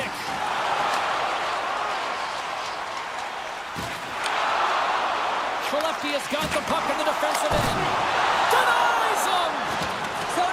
Skellefteå's got the puck in the defensive end. Denies him!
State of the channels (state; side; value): identical; both; correlation 1.00